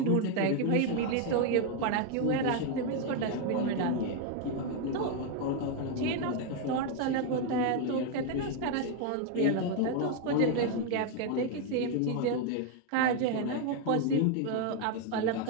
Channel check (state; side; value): different; both; correlation 0.01